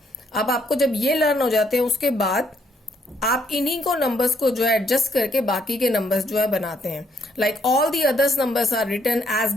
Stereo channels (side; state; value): both; normal; correlation 0.70